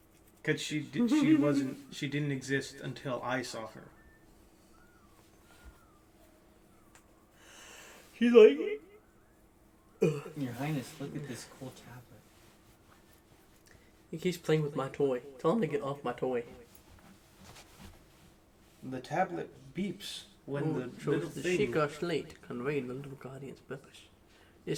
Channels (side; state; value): both; identical; correlation 1.00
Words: Cause she didn't exist until I saw her. She's like, Your Highness, look at this cool tablet. he keeps playing with my toy. Tell him to get off my toy. The tablet beeps when the shows little the thing. Sheikah slate conveyed the little guardian's purpose.